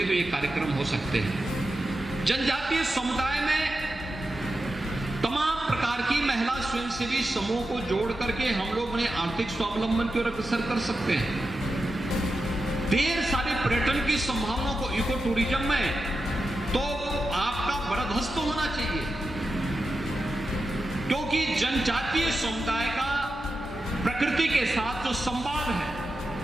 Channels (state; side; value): normal; both; correlation 0.90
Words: तो ये कार्यक्रम हो सकते हैं। जनजातीय समुदाय में तमाम प्रकार की महिला स्वयंसेवी समूह को जोड़ करके हम लोग उन्हें आर्थिक स्वावलंबन की ओर अग्रसर कर सकते हैं। ढेर सारे पर्यटन की संभावनाओं को, इको टूरिज्म में तो आपका बरदस्त होना चाहिए, क्योंकि जनजातीय समुदाय का प्रकृति के साथ जो संवाद है